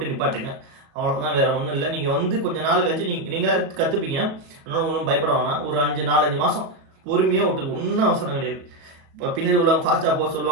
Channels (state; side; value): late; left; 37 ms